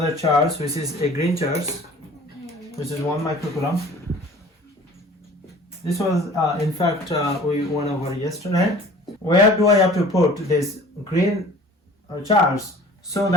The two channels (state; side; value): normal; both; correlation 0.46